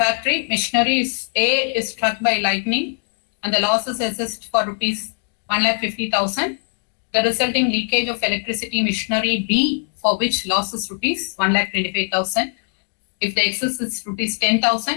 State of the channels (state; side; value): silent; right; 55 dB below the other